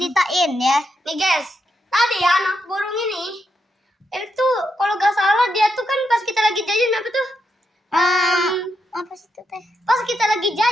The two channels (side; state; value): both; normal; correlation 0.82